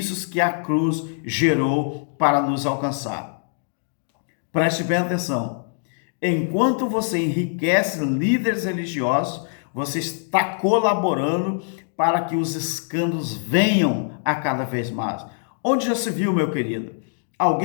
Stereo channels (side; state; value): right; silent; digital silence